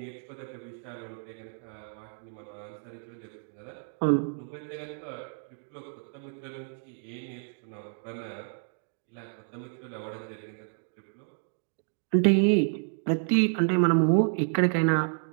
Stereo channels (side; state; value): left; silent; 58 dB below the other